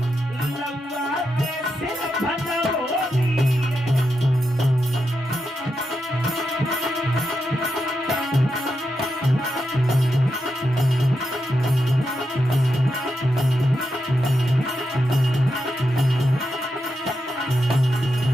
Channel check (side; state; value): both; normal; correlation 0.86